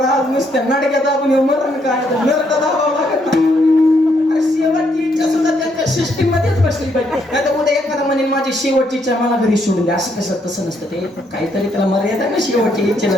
नुसत्या नाटक्यात आपण मरण काय नरक दाबावं लागत नाही. शेवटची इच्छा सुद्धा त्यांच्या सिस्टीम मध्येच बसली पाहिजे. नाही तर उद्या एखादा म्हणेन माझी शेवटची इच्छा मला घरी सोडून द्या, असं कसं तसं नसतं. ते काहीतरी त्याला मर्यादा ना शेवटची इच्छेला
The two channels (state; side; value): normal; both; correlation 0.73